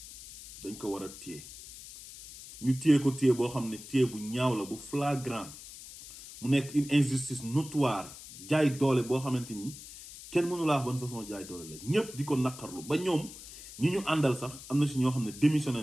dañ ko war a téye ñu téye ko téye boo xam ne téye bu ñaaw la bu flagrant mu nekk une injustice notoire jaay doole boo xamante ni kenn mënu laa wax ban façon jaay doole la ñëpp di ko naqarlu ba ñoom ñi ñu àndal sax am na si ñoo xam ne démissionné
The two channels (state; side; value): noise; left; hiss, 15 dB below the sound